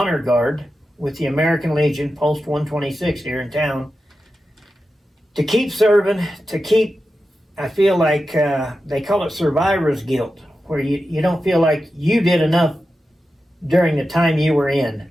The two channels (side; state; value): both; normal; correlation 0.91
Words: guard with the American Legion, Post 126 here in town. To keep serving, I feel like they call it survivor's guilt, where you don't feel like you did enough during the time you were in.